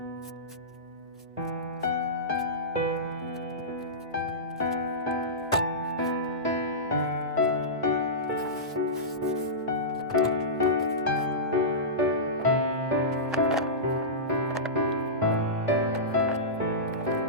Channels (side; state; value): both; normal; correlation -0.17